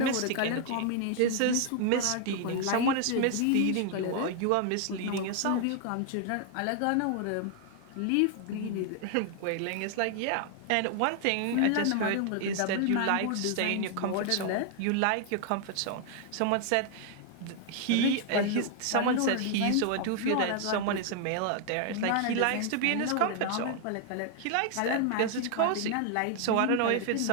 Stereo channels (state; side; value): different; both; correlation 0.00